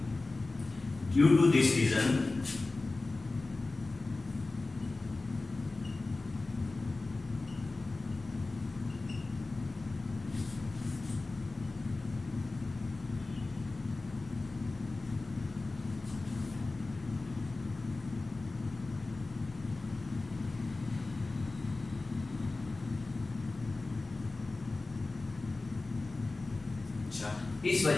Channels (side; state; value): right; quieter; 3.3 dB